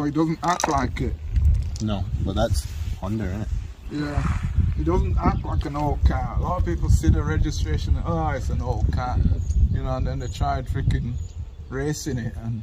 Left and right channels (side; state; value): both; identical; correlation 1.00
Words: it doesn't act like it. No, but that's Honda, isn't it? Yeah, it doesn't act like an old car. A lot of people see the registration and, oh, it's an old car. You know, and then they tried freaking racing it, and